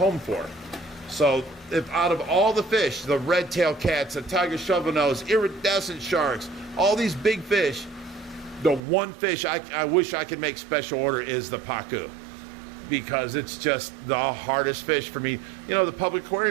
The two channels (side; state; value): left; drops out; at 8.8 s